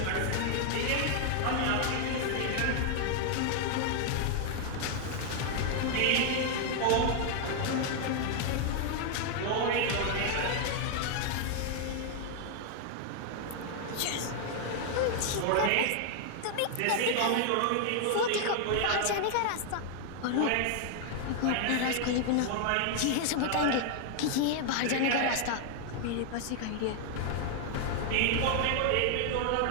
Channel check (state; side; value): different; both; correlation 0.00